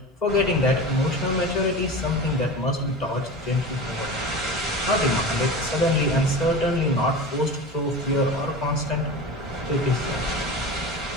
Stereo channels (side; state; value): both; normal; correlation 0.30